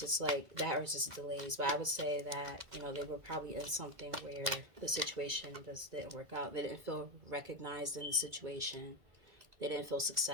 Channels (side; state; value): left; late; 2.3 ms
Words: It's like that was just delays. But I would say that, you know, they were probably in something where the situation just didn't work out. They didn't feel recognized in the situation. They didn't feel